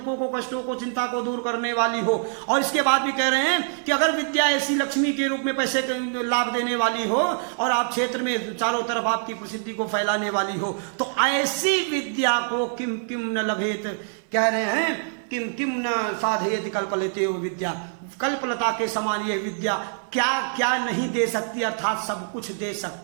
को, कष्टों को, चिंता को दूर करने वाली हो, और इसके बाद भी कह रहे हैं कि अगर विद्या ऐसी लक्ष्मी के रूप में पैसे लाभ देने वाली हो और आप क्षेत्र में चारों तरफ आपकी प्रसिद्धि को फैलाने वाली हो, तो ऐसी विद्या को किम किम न लभेत, कह रहे हैं किम किम न साधयति कल्पलते वो विद्या। कल्पलता के समान ये विद्या क्या क्या नहीं दे सकती, अर्थात सब कुछ दे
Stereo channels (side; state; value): left; silent; digital silence